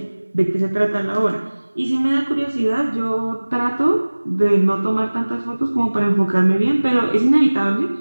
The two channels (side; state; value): both; inverted; correlation -1.00